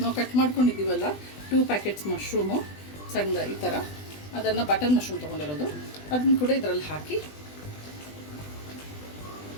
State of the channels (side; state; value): right; late; 20 ms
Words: ಕಟ್ ಮಾಡ್ಕೊಂಡಿದ್ದೀವಲ್ಲ 2 ಪ್ಯಾಕೆಟ್ಸ್ ಮಶ್ರೂಮು ಸಣ್ಣ ಈ ಥರ, ಅದನ್ನು ಬಟರ್ ಮಶ್ರೂಮ್ ತೊಗೊಂಡಿರೋದು, ಅದನ್ನು ಕೂಡ ಇದರಲ್ಲಿ ಹಾಕಿ